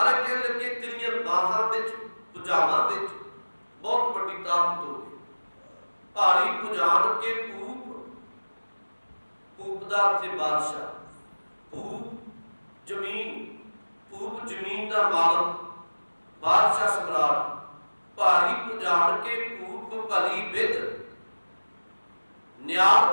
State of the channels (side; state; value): both; inverted; correlation -1.00